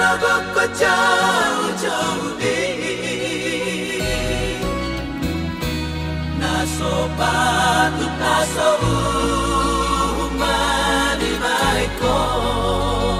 ko jauh-jauh di naso patut naso umanibay ko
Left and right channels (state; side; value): identical; both; correlation 1.00